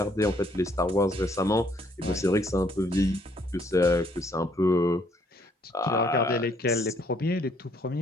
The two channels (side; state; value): both; normal; correlation 0.67